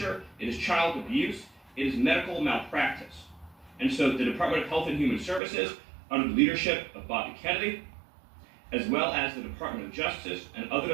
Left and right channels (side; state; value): left; drops out; at 5.4 s